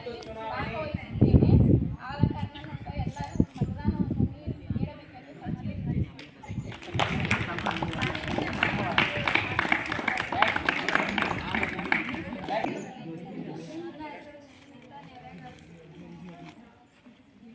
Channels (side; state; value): both; identical; correlation 1.00